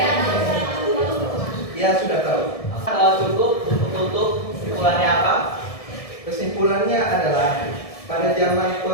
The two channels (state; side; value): late; right; 1.7 ms